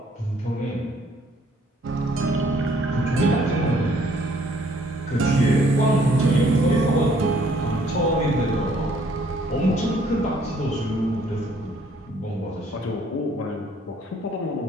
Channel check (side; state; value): both; normal; correlation 0.63